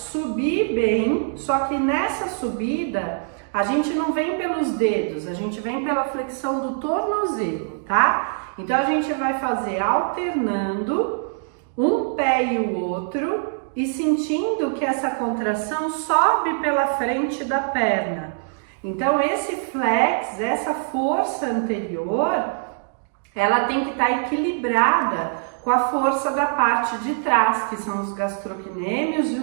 bem, só que nessa subida, a gente não vem pelos dedos, a gente vem pela flexão do tornozelo, tá? Então, a gente vai fazer alternando um pé e o outro e sentindo que essa contração sobe pela frente da perna. Então, esse flex, essa força anterior, ela tem que estar equilibrada com a força da parte de trás, que são os gastrocnêmios e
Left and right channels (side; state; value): left; silent; digital silence